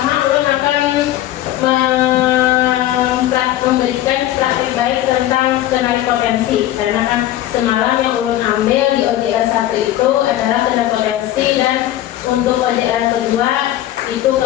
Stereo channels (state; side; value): quieter; right; 13.6 dB